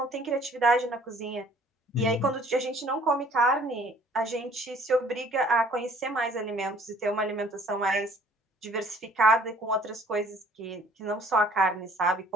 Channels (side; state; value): both; normal; correlation 0.56